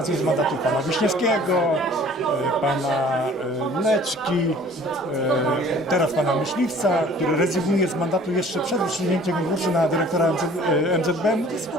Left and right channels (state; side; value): normal; both; correlation 0.51